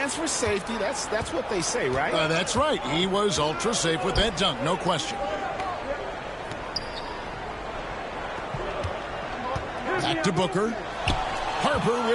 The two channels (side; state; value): both; identical; correlation 1.00